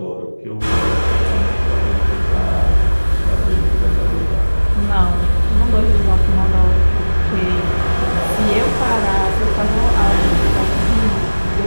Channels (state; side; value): inverted; both; correlation -1.00